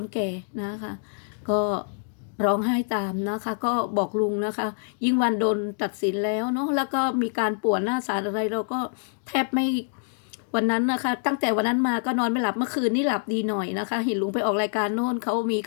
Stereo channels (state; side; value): silent; right; digital silence